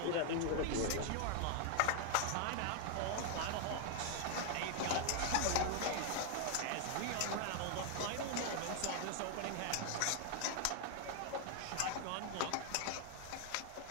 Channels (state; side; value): different; both; correlation 0.00